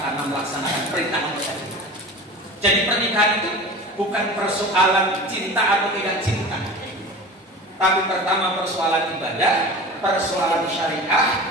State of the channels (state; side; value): normal; both; correlation 0.35